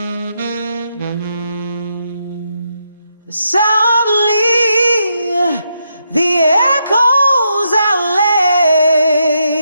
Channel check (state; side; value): inverted; both; correlation -0.81